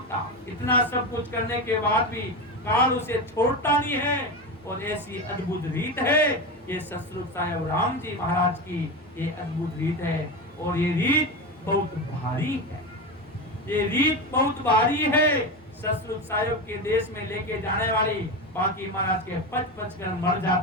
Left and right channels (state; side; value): normal; both; correlation 0.19